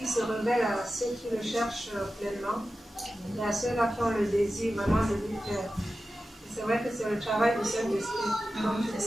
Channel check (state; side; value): normal; both; correlation 0.93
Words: se révèle à ceux qui le cherchent pleinement et à ceux-là qui ont le désir vraiment de lui faire. Et c'est vrai que c'est le travail du Saint-Esprit, comme tu